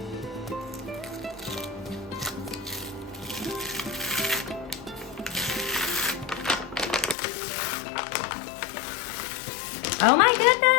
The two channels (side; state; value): right; drops out; at 7.2 s